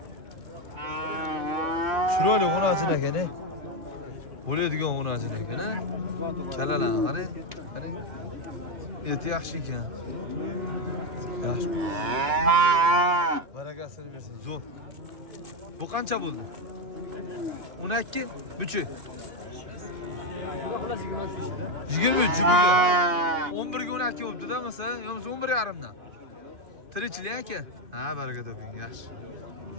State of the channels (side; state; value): left; late; 3.0 ms